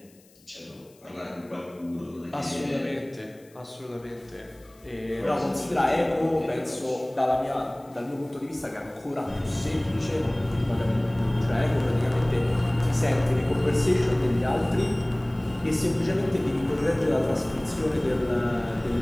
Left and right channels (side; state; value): left; noise; hiss, 29 dB below the sound